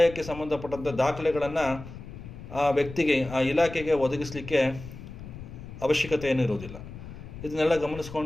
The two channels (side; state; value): left; noise; rumble, 13 dB below the sound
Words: ಸಂಬಂಧಪಟ್ಟಂಥ ದಾಖಲೆಗಳನ್ನು ಆ ವ್ಯಕ್ತಿಗೆ, ಆ ಇಲಾಖೆಗೆ ಒದಗಿಸಲಿಕ್ಕೆ ಅವಶ್ಯಕತೆ ಏನೂ ಇರೋದಿಲ್ಲ. ಇದನ್ನೆಲ್ಲ